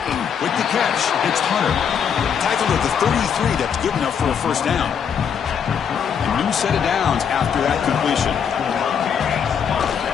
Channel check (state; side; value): quieter; right; 7.5 dB